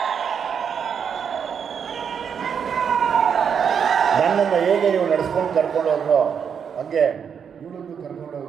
ನನ್ನನ್ನು ಹೇಗೆ ನೀವು ನಡೆಸ್ಕೊಂಡು ಕರ್ಕೊಂಡು ಹೋದ್ರೋ ಹಾಗೆ ಇವಳನ್ನು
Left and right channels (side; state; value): left; quieter; 7.3 dB